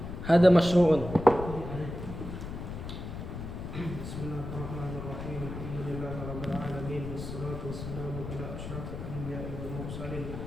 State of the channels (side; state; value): left; noise; rumble, 8 dB below the sound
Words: Hada masyru'un. Bismillahirrahmanirrahim. Alhamdulillahirabbil alamin wassalatu wassalamu ala asyrafil anbiya'i wal mursalin